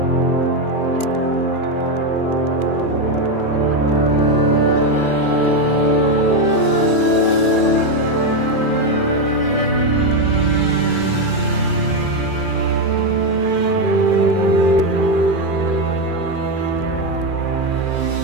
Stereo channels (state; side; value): late; right; 2.4 ms